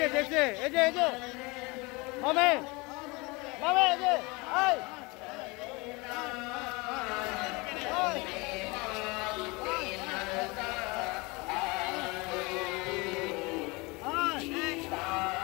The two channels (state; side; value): quieter; right; 25.7 dB